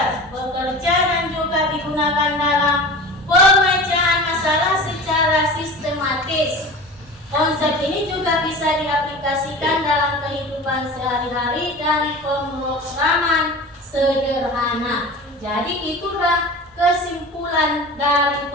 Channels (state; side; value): normal; both; correlation 0.35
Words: bekerja dan juga digunakan dalam pemecahan masalah secara sistematis. Konsep ini juga bisa diaplikasikan dalam kehidupan sehari-hari dan pemrograman sederhana. Jadi itulah kesimpulan dari